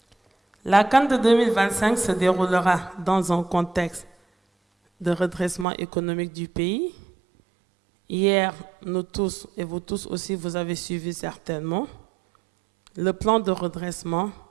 La CAN de 2025 se déroulera dans un contexte de redressement économique du pays. Hier, nous tous, et vous tous aussi, vous avez suivi certainement le plan de redressement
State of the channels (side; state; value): left; drops out; at 5.7 s